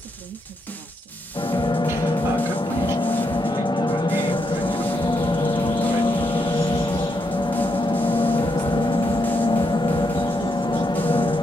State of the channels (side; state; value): both; normal; correlation 0.80